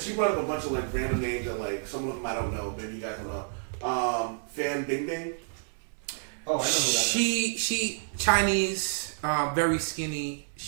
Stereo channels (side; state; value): left; silent; 58 dB below the other